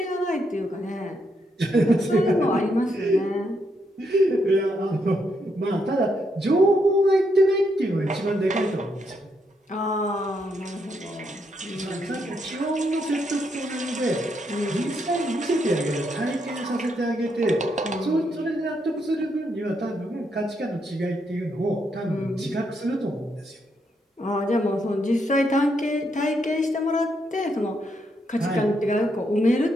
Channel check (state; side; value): normal; both; correlation 0.78